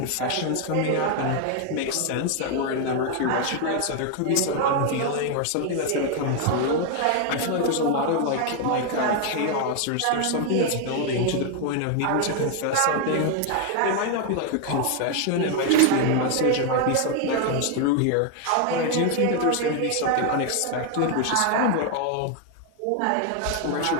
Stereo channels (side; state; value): both; different; correlation 0.01